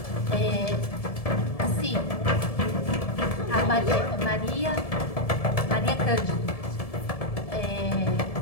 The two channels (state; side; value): late; right; 1.7 ms